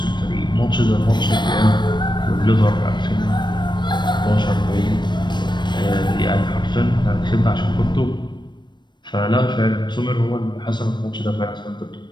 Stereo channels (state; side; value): late; right; 0.22 ms